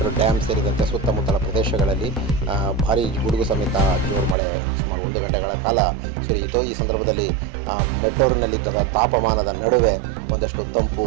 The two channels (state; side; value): drops out; left; at 4.4 s